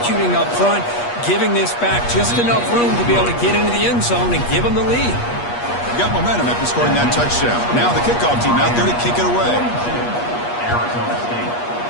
up front, giving this back just enough room to be able to get into the end zone and give them the lead. Got momentum after scoring that touchdown. Now the kickoff team out there to kick it away. Arizona State,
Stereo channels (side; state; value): right; late; 8.4 ms